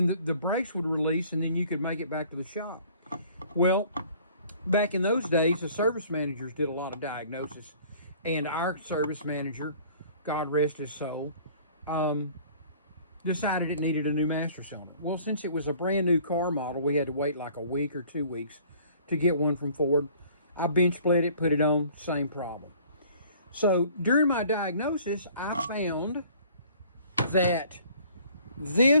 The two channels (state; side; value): inverted; both; correlation -0.53